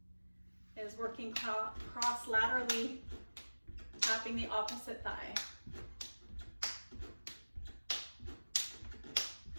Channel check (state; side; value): inverted; both; correlation -1.00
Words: is working cross laterally, tapping the opposite thigh.